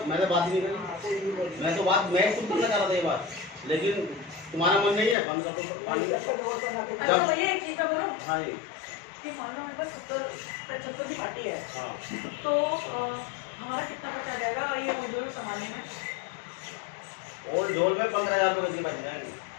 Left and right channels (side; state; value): right; drops out; at 5.2 s